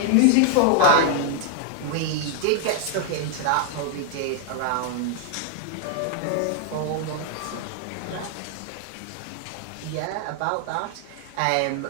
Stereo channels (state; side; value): different; both; correlation 0.00